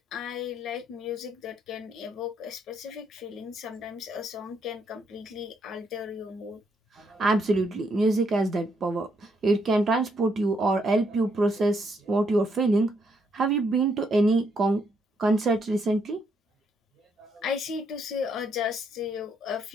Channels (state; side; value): normal; both; correlation 0.74